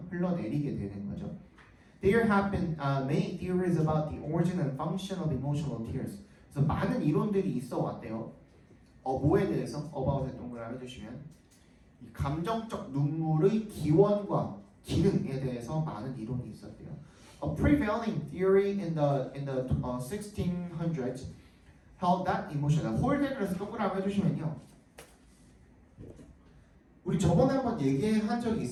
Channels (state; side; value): identical; both; correlation 1.00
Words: 흘러내리게 되는 거죠. There have been many theories about the origin and function of emotional tears. 그래서 많은 이론들이 있어 왔대요. 뭐에 대해서? about에 동그라미 해주시면 이 감정적 눈물의 기원과 기능에 대해서 많은 이론이 있었대요. A prevailing theory in the 1600s held that emotion. 홀드 그래서 동그라미 해주시면요. 우리 저번에 한번 얘기한 적이